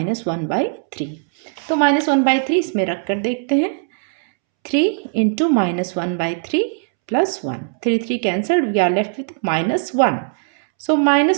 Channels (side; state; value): left; silent; 66 dB below the other